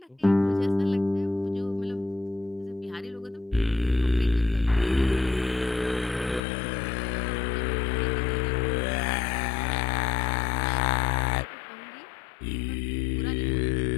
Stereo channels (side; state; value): right; drops out; at 6.4 s